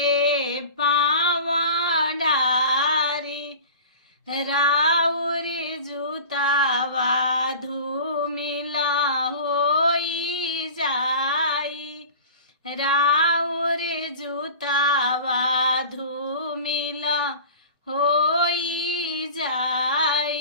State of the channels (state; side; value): inverted; both; correlation -0.38